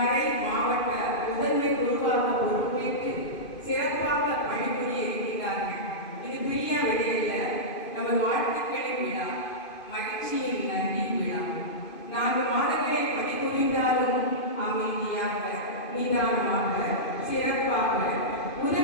மாவட்ட முதன்மை குருவாக பொறுப்பேற்று சிறப்பாக பணிபுரிய இருக்கிறார்கள். இது பிரியா விடையில நமது வாழ்த்துக்களின் விழா, மகிழ்ச்சியின் நன்றி விழா. 4 மாதங்களை பணிபுரிந்தாலும் அமைதியாக, நிதானமாக, சிறப்பாக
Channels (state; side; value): late; right; 2.5 ms